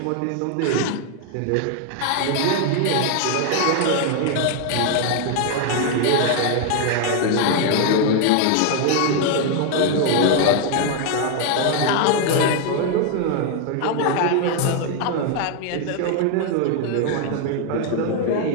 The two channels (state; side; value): different; both; correlation 0.00